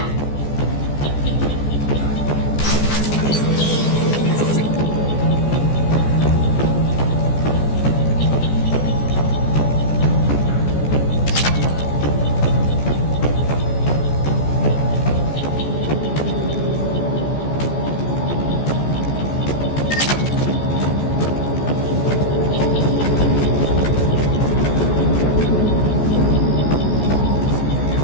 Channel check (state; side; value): late; right; 14 ms